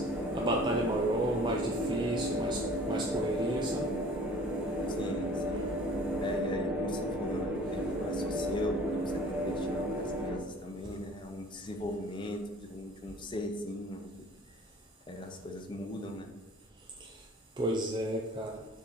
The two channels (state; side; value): normal; both; correlation 0.49